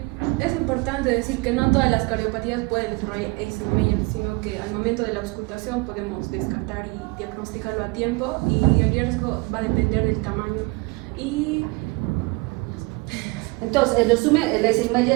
es importante decir que no todas las cardiopatías pueden desarrollar Eisenmenger, sino que al momento de la auscultación podemos descartar y diagnosticarlo a tiempo, y el riesgo va a depender del tamaño. Y entonces, en resumen, el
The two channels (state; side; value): quieter; left; 25.6 dB